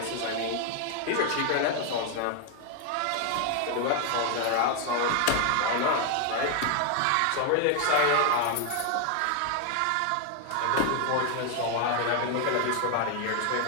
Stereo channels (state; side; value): different; both; correlation 0.01